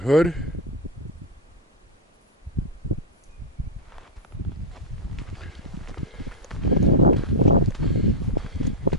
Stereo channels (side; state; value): both; normal; correlation -0.02